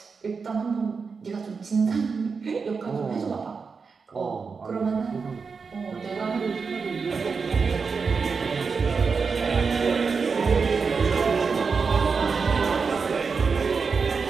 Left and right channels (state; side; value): quieter; left; 5.2 dB